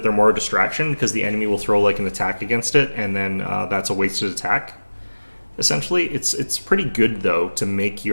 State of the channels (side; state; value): both; inverted; correlation -1.00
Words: they're more a distraction because the enemy will throw like an attack against it, and then that's a wasted attack. Essentially, it's pretty good though to make